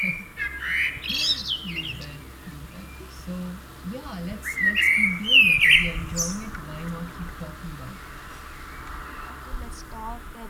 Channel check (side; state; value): both; identical; correlation 1.00